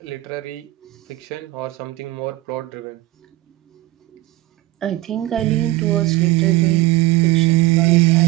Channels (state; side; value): quieter; left; 17.5 dB